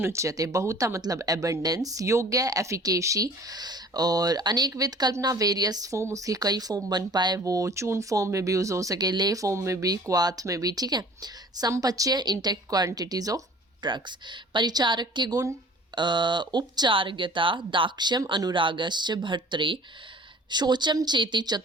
उच्यते। बहुता मतलब एबंडेंस, योग्य एफिकेशी, और अनेक विद कल्पना वेरियस फॉर्म, उसकी कई फॉर्म बन पाए, वो चून फॉर्म में भी यूज हो सके, ले फॉर्म में भी, क्वाथ में भी। ठीक है, संपच्य intact quantities of drugs. Paricharak के गुण उपचारज्ञता दाक्ष्यम अनुरागश्च भर्तृ शोचम चेति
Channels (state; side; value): normal; both; correlation 0.48